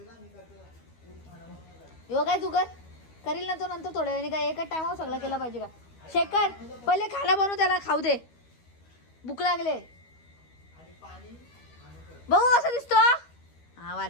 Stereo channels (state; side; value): late; right; 13 ms